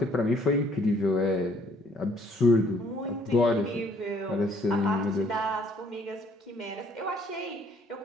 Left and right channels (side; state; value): both; normal; correlation 0.62